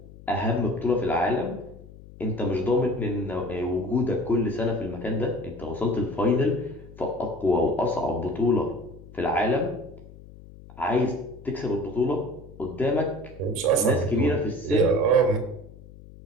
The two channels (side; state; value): left; noise; hum, 19 dB below the sound